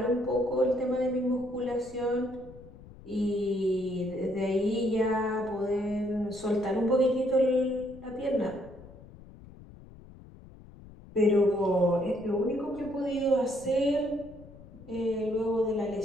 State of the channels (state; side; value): noise; left; rumble, 19 dB below the sound